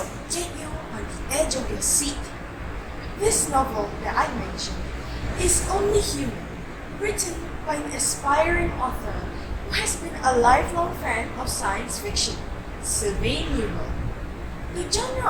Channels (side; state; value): both; identical; correlation 1.00